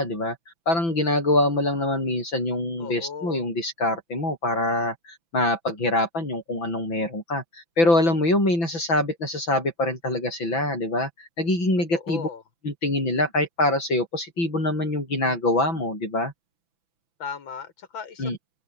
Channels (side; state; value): right; late; 6.0 ms